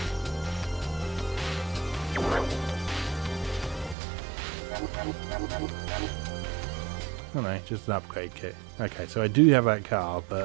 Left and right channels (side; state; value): left; drops out; at 4.0 s